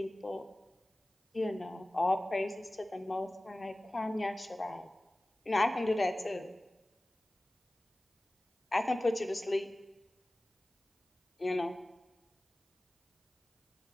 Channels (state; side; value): normal; both; correlation 0.98